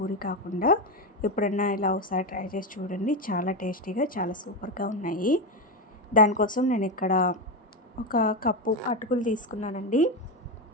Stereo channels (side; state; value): both; normal; correlation 0.12